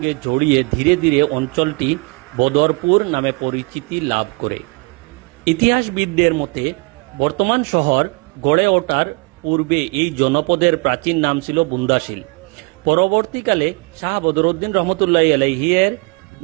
জড়িয়ে ধীরে ধীরে অঞ্চলটি বদরপুর নামে পরিচিতি লাভ করে। ইতিহাসবিদদের মতে বর্তমান শহর গড়ে ওঠার পূর্বে এই জনপদের প্রাচীন নাম ছিল বুন্দাশিল। পরবর্তীকালে শাহ বদরউদ্দিন রহমতুল্লাহ আলাইহি এর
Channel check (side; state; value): left; quieter; 29.8 dB